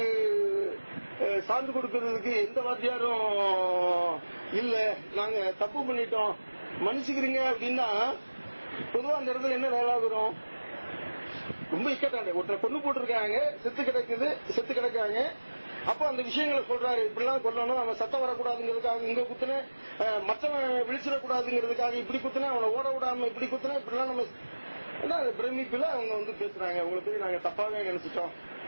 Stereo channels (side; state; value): both; inverted; correlation -1.00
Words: சான்று கொடுக்கறதுக்கு எந்த வாத்தியாரும் இல்ல, நாங்க தப்பு பண்ணிட்டோம் மன்னிச்சுக்கிறீங்க அப்படின்னா பொதுவா அந்த இடத்துல என்ன வேலாகிறோம்? ரொம்ப இக்கட்டாங்க. ஒருத்தரை கொண்டு போட்டிருக்காங்க, செத்து கிடக்காங்க. அப்ப அந்த விஷயங்களை சொல்றாரு, இப்படிலாம் கொல்லணும், அவன் சத்தம் வரக்கூடாதுங்கிறதுக்காக இங்க குத்துன, மற்றவன் விழிச்சிடக்கூடாதுங்கிறதுக்காக இப்படி குத்துன, அவனை ஓட விடாம இப்படி குத்துன, இப்படிலாம் நம்ம பிரமிப்புல அவங்க பேசுறாங்க. அவங்களை போய் நாங்க தப்பாவே நினைச்சிட்டோம்